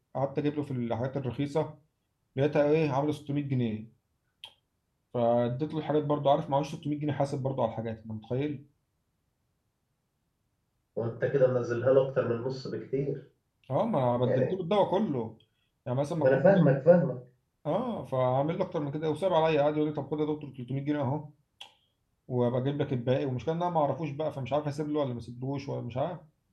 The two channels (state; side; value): identical; both; correlation 1.00